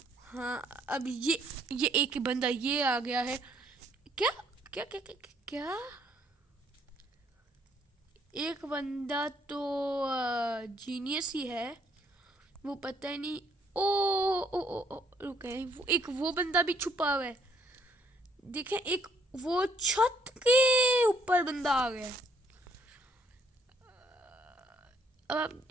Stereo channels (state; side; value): normal; both; correlation 0.67